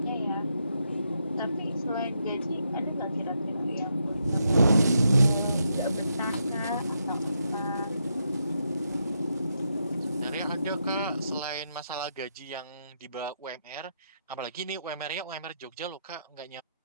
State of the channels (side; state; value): both; inverted; correlation -0.81